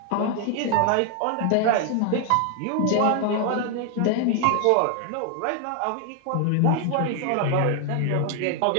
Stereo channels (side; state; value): both; different; correlation 0.00